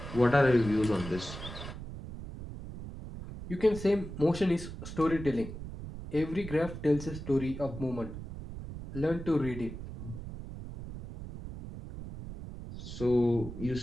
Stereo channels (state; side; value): noise; right; rumble, 10 dB below the sound